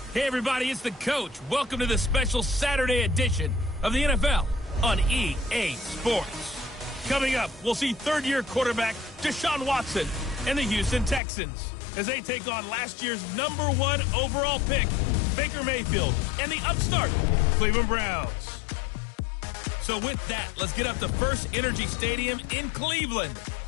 Hey everybody, it's the coach. Welcome to the special Saturday edition of the NFL on EA Sports. Coming up, we'll see third-year quarterback Deshaun Watson and the Houston Texans as they take on last year's #1 overall pick, Baker Mayfield, and the upstart Cleveland Browns. So with that, let's get up to First Energy Stadium in Cleveland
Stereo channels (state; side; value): drops out; right; at 11.2 s